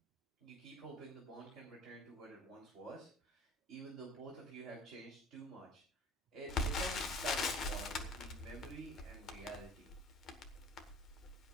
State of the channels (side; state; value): both; normal; correlation 0.45